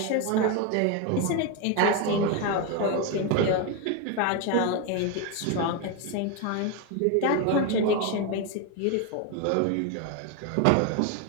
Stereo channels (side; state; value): both; different; correlation 0.02